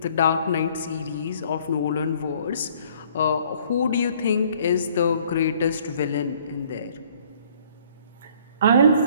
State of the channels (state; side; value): inverted; both; correlation -0.59